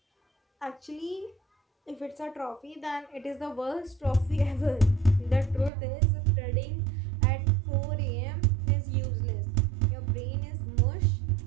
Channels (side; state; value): left; drops out; at 5.7 s